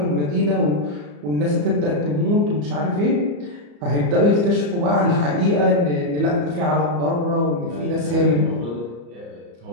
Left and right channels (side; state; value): left; late; 34 ms